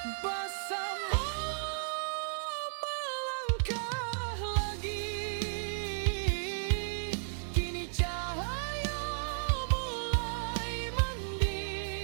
Bersama melangkah lagi, kini cahaya mulai mandi.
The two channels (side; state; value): left; silent; digital silence